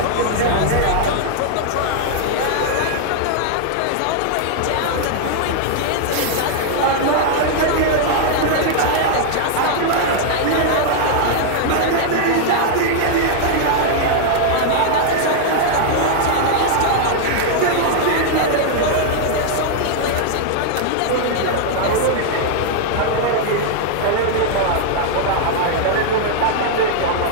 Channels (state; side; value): different; both; correlation 0.00